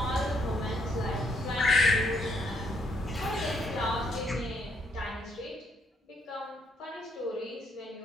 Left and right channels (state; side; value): normal; both; correlation 0.71